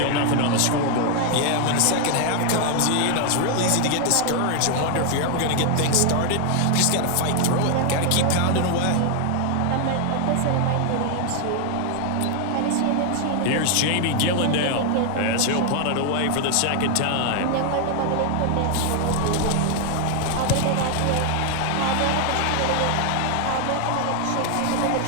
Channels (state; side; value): different; both; correlation 0.00